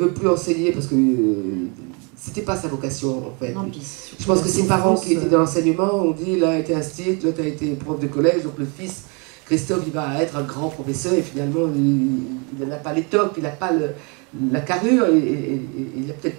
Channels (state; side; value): quieter; left; 33.0 dB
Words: plus enseigner parce que c'était pas sa vocation en fait. Non, je pense que ses parents qui étaient dans l'enseignement ont dit, l'un a été institut, l'autre a été prof de collège, donc le fils Christophe, il va être un grand professeur et finalement il n'a pas l'étoffe, il n'a pas la carrure et il n'a peut-être